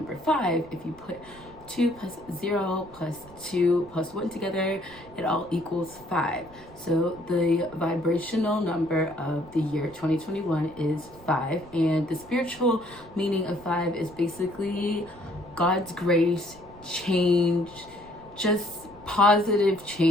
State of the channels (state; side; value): noise; right; rumble, 22 dB below the sound